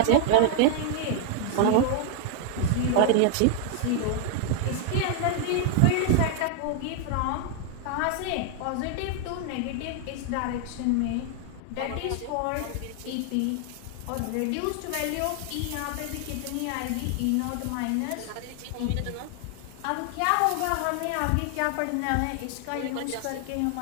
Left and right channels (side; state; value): both; different; correlation 0.00